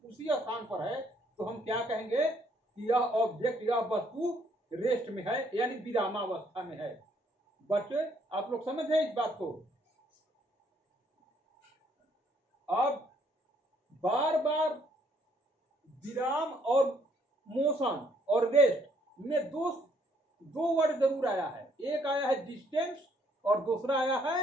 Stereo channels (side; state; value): both; normal; correlation 0.67